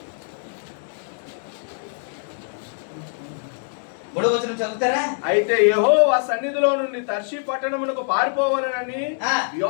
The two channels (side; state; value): right; silent; digital silence